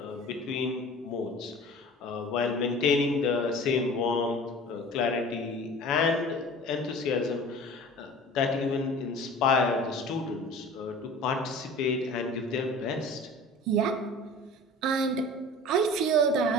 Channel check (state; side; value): normal; both; correlation 0.41